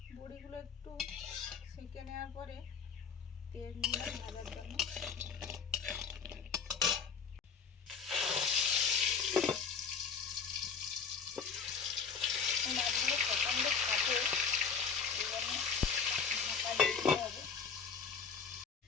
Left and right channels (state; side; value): quieter; right; 6.0 dB